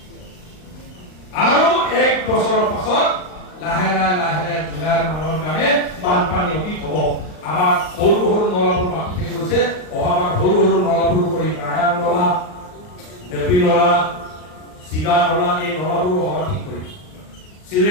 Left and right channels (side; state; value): right; late; 39 ms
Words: আৰু 1 বছৰৰ পাছত লাহে লাহে জুলাইৰ মাহৰ কাৰণে বানপানী অতীত হ'ব আমাৰ সৰু নলাবোৰ বাকী থাকি গৈছে অহাবাৰ সৰু নলাবোৰ কৰি নাৰায়ণ নলা দেৱী নলা চিগা নলা এই নলাবোৰ অহা ঠিক কৰি